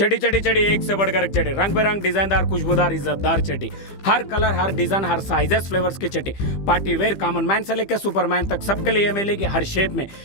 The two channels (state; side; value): late; right; 15 ms